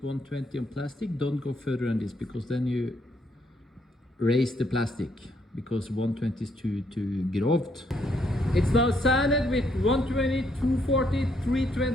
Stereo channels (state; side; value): normal; both; correlation 0.72